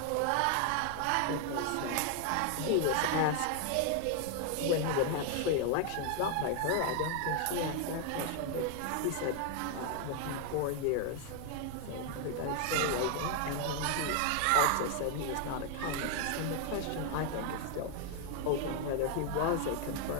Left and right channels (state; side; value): different; both; correlation 0.00